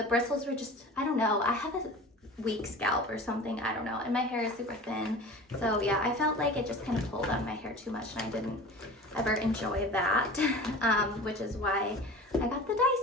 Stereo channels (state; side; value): normal; both; correlation 0.37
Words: bristles were just, I don't know, I have a weak scalp or something, I don't know, and my hair is super thin, so yeah, I felt like it just kind of pulled on my hair too much, and I didn't ever enjoy that, which is why I got the